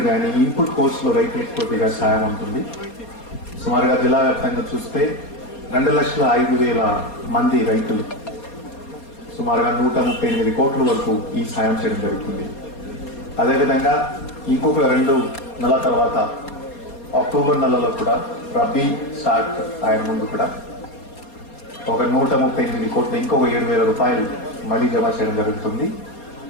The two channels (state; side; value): late; right; 4.2 ms